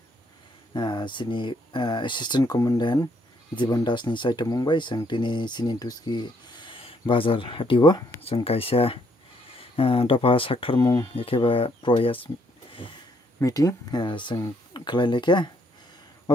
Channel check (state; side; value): normal; both; correlation 0.70